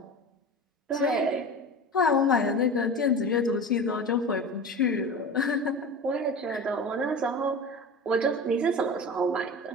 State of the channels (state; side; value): normal; both; correlation 0.32